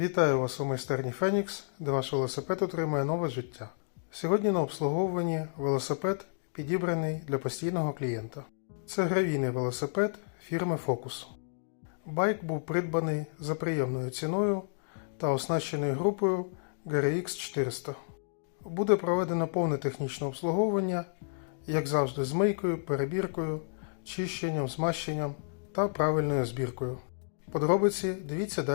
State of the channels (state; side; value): silent; right; digital silence